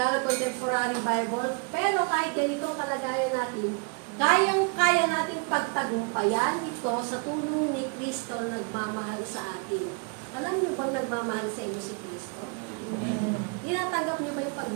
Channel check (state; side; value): quieter; left; 34.6 dB